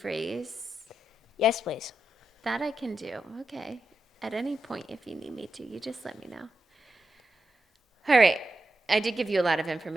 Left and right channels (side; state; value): both; normal; correlation 0.87